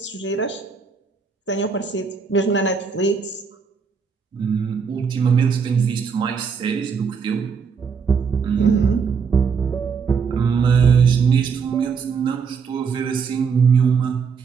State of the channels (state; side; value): quieter; left; 5.9 dB